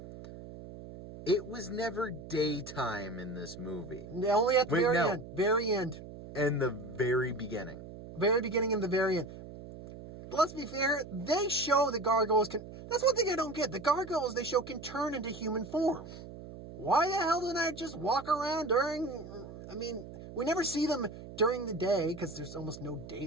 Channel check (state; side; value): noise; right; hum, 14 dB below the sound